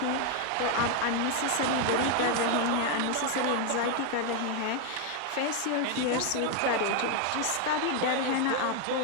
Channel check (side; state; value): both; different; correlation 0.01